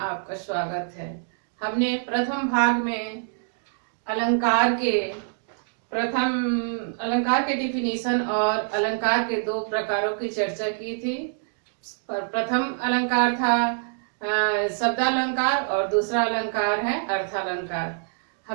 स्वागत है। हमने प्रथम भाग में अलंकार के डिफिनीशन और अलंकार के दो प्रकारों की चर्चा की थी। प्रथम अलंकार था शब्दालंकार और दूसरा अलंकार है अर्थालंकार।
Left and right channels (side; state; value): left; silent; digital silence